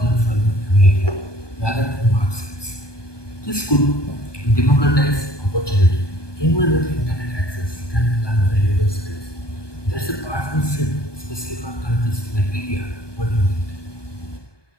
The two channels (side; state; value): right; late; 1.2 ms